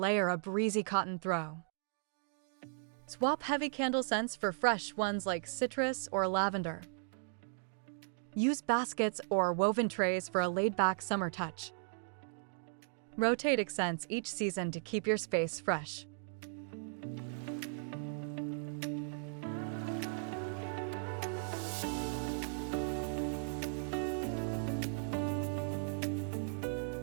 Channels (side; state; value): left; silent; digital silence